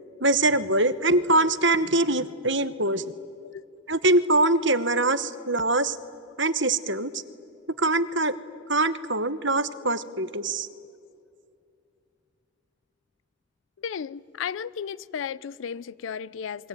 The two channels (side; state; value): both; normal; correlation -0.14